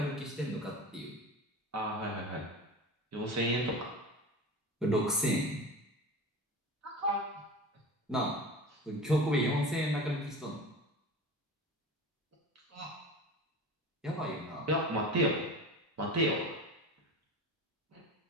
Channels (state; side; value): normal; both; correlation 0.32